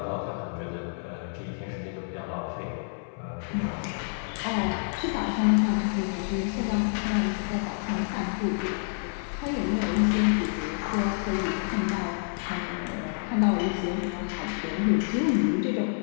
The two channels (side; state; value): right; silent; 59 dB below the other